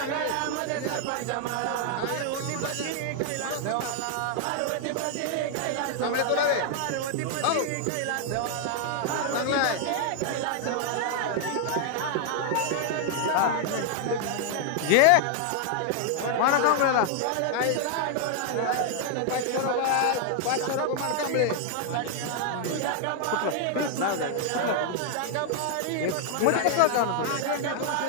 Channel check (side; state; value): both; different; correlation 0.00